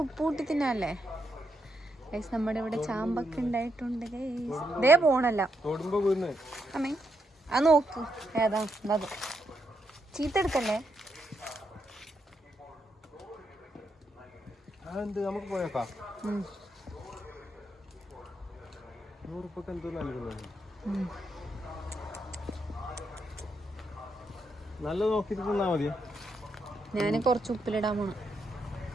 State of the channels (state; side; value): normal; both; correlation 0.80